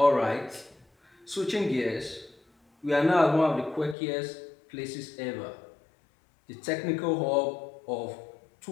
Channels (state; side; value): drops out; right; at 4.0 s